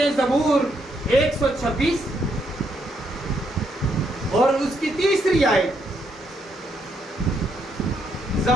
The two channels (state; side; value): normal; both; correlation 0.76